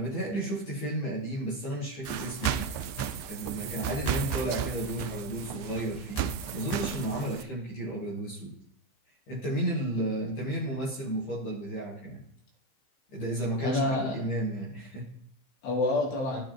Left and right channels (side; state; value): right; late; 15 ms